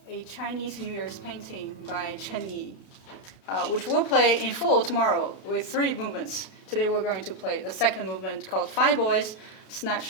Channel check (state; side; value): late; right; 30 ms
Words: a Chinese New Year's painting by Chen Yi. Which we'll play in full tomorrow with 3 movements. Today we're going to play the second movement called Five Boys